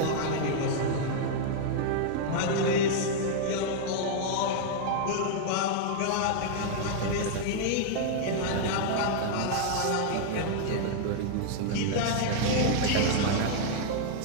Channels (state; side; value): different; both; correlation -0.01